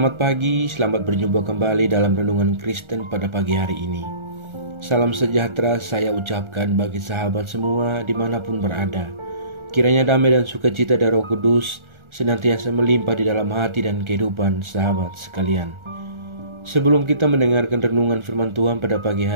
pagi, selamat berjumpa kembali dalam renungan Kristen pada pagi hari ini. Salam sejahtera saya ucapkan bagi sahabat semua dimanapun berada. Kiranya damai dan sukacita dari Roh Kudus senantiasa melimpah di dalam hati dan kehidupan sahabat sekalian. Sebelum kita mendengarkan renungan firman Tuhan pada pagi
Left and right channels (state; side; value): late; left; 1.4 ms